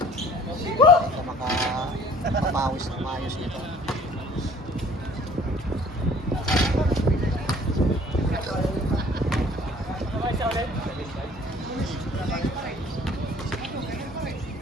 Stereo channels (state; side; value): normal; both; correlation 0.53